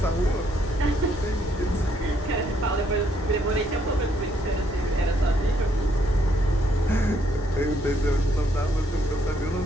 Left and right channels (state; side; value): normal; both; correlation 0.71